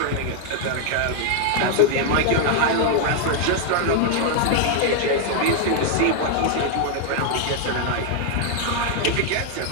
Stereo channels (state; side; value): different; both; correlation 0.00